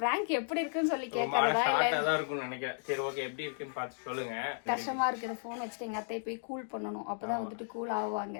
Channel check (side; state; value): right; silent; digital silence